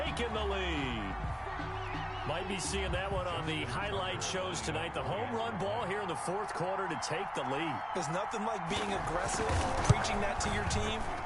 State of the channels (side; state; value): both; identical; correlation 1.00